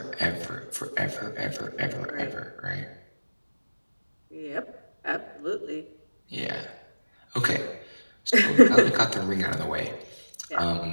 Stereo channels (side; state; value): both; inverted; correlation -1.00